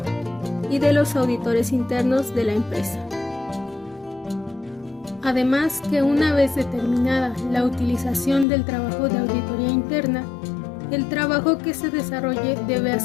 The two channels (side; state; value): right; drops out; at 8.5 s